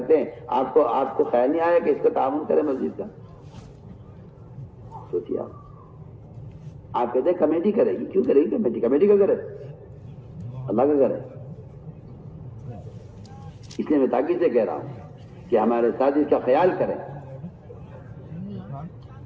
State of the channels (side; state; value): both; identical; correlation 1.00